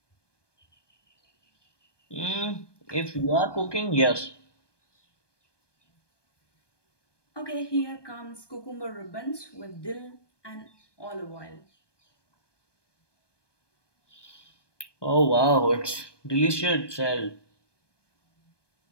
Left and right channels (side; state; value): right; late; 1.2 ms